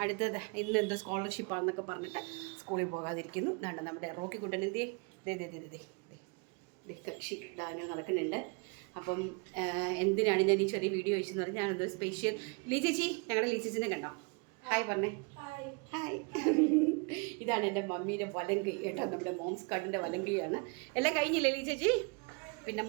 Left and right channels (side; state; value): left; quieter; 31.6 dB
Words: അടുത്തത് ഇന്ന് എന്തോ സ്കോളർഷിപ്പാണെന്നൊക്കെ പറഞ്ഞിട്ട് സ്കൂളിൽ പോകാതിരിക്കുന്നു. ഇതാണ് നമ്മുടെ റോക്കിക്കുട്ടൻ. കക്ഷി ഇടാനോ നടക്കുന്നുണ്ട്. അപ്പം എന്തിനാണ് ഞാൻ ഈ ചെറിയ വീഡിയോ വെച്ചെന്ന് പറഞ്ഞാൽ ഞാനെന്തോ സ്പെഷ്യൽ ലീ ചേച്ചി, ഞങ്ങളുടെ ലീ ചേച്ചിനെ കണ്ടോ? ഹായ് പറഞ്ഞേ. ഹായ്. ഇതാണ് എൻ്റെ മമ്മീൻ്റെ വലങ്കൈ കേട്ടോ, നമ്മുടെ മോംസ് കാർഡിൻ്റെ വലങ്കൈയാണ്. എല്ലാം കഴിഞ്ഞില്ലേ ലീ ചേച്ചി? പിന്നെ